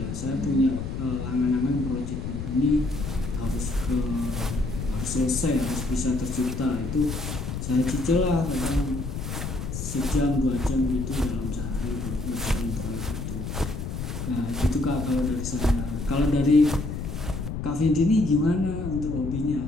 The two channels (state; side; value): noise; left; rumble, 5 dB below the sound